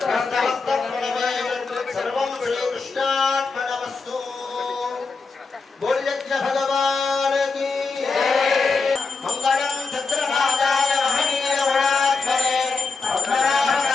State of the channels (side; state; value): right; quieter; 4.4 dB